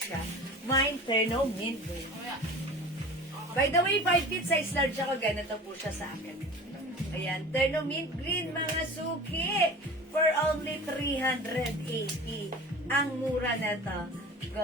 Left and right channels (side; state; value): both; normal; correlation 0.38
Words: Mine Terno Mint Green. By the way, 5 feet size large ako, ganito po siya sa akin. Ayan, Terno Mint Green, mga suki, for only 380. Ang mura na to.